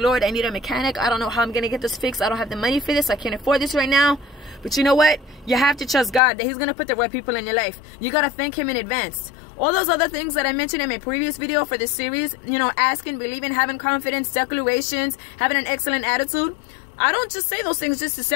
I need a mechanic. I don't know how I'm going to get this fixed. I don't have the money for this. I can't afford this right now. But you know what? You have to trust God that He's going to put the right people in your life. You got to thank Him in advance. All those other things that I mentioned in my previous video for this series, you know, asking, believing, having confidence, declarations, having an excellent attitude. I don't just say those things just to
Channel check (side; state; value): right; drops out; at 6.2 s